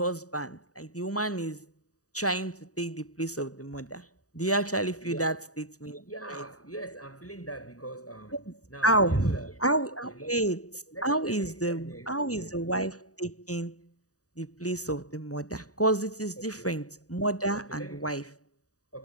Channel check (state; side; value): late; right; 0.66 ms